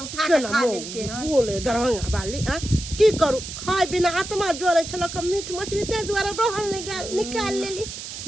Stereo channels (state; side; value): noise; right; hiss, 9 dB below the sound